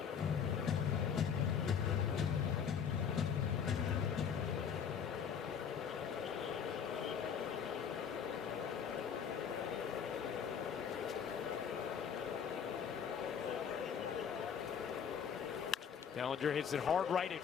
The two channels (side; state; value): right; quieter; 7.3 dB